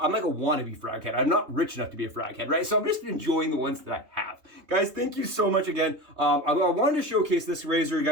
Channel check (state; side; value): late; left; 3.2 ms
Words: like a wannabe frag head. I'm not rich enough to be a frag head, right? So I'm just enjoying the ones that I have. Guys, thank you so much again. I wanted to showcase this razor,